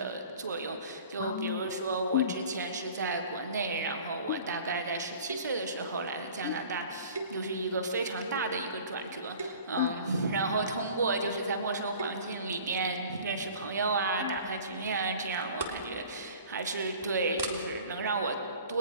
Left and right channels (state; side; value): inverted; both; correlation -0.45